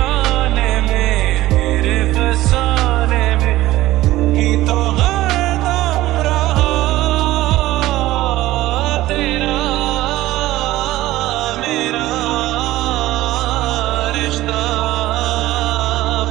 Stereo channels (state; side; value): quieter; left; 16.3 dB